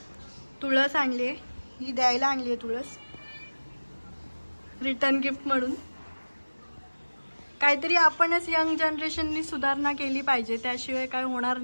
तुळस आणली आहे, ही द्यायला आणली आहे तुळस, रिटर्न गिफ्ट म्हणून. काहीतरी आपणच यंग जनरेशननी सुधारणा केली पाहिजे, त्याशिवाय काय होणार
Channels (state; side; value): inverted; both; correlation -1.00